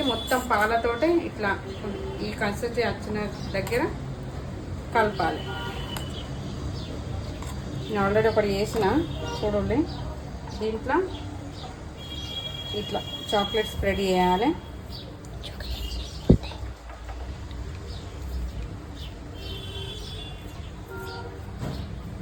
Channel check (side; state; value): both; identical; correlation 1.00